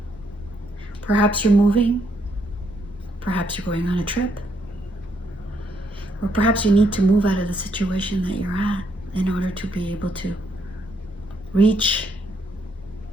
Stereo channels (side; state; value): both; normal; correlation 0.74